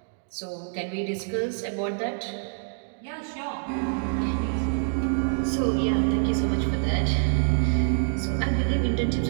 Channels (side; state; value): left; silent; digital silence